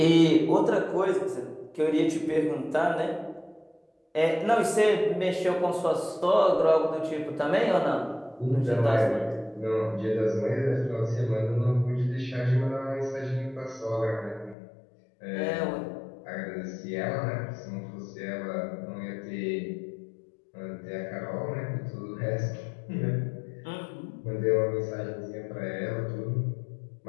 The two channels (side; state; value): right; drops out; at 14.6 s